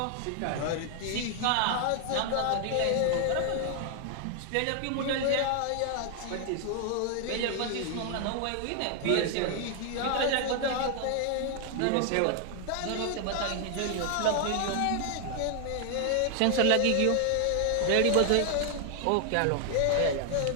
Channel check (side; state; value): both; different; correlation 0.00